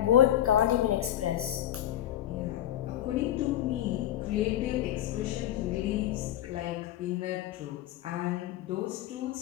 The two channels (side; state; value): right; quieter; 12.4 dB